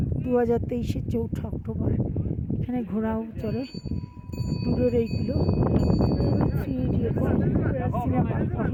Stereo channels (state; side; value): identical; both; correlation 1.00